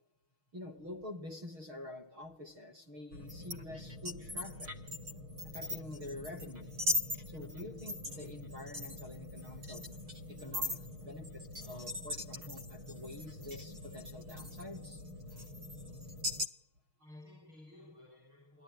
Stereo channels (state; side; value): late; left; 6.4 ms